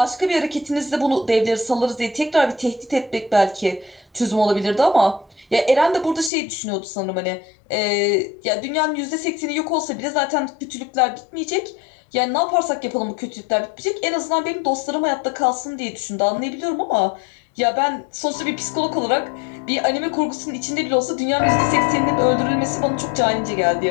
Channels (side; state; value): right; drops out; at 6.3 s